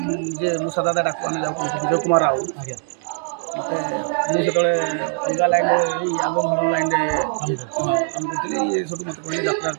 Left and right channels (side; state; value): left; silent; digital silence